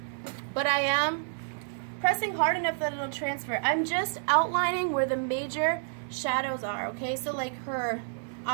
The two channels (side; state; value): left; silent; digital silence